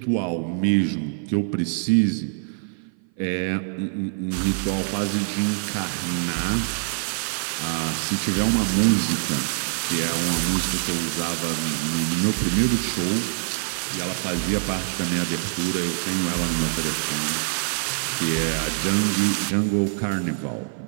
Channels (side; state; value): left; silent; 56 dB below the other